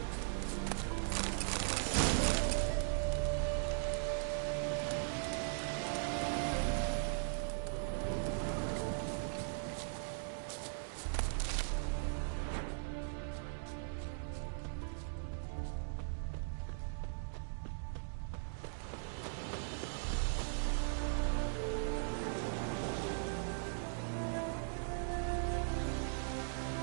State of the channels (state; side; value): silent; left; digital silence